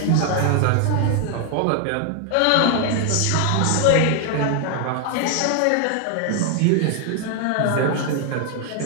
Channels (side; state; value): both; different; correlation 0.01